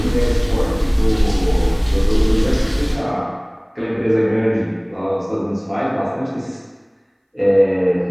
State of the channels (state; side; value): identical; both; correlation 1.00